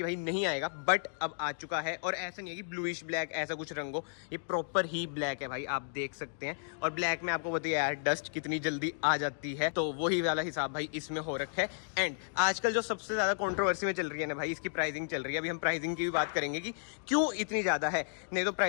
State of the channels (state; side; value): silent; right; digital silence